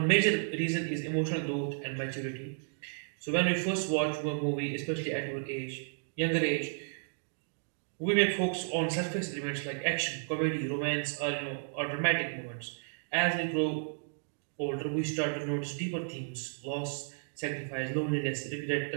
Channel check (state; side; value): silent; left; digital silence